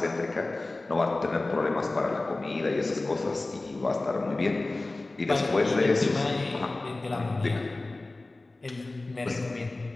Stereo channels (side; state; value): right; quieter; 3.1 dB